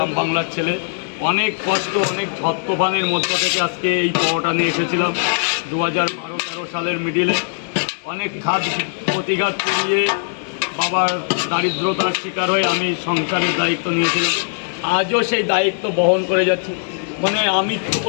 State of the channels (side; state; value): right; silent; digital silence